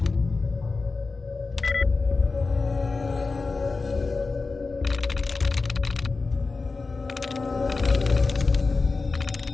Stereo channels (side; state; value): right; quieter; 4.0 dB